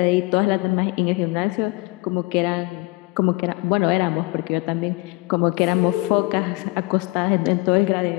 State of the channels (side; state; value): right; quieter; 23.7 dB